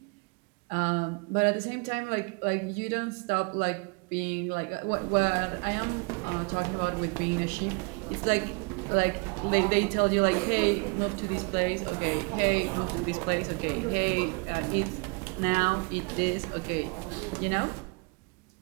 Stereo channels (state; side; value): quieter; left; 32.9 dB